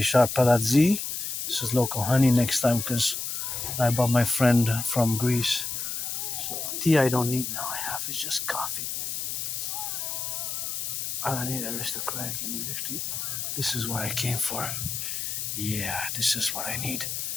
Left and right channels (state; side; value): noise; left; hiss, 3 dB below the sound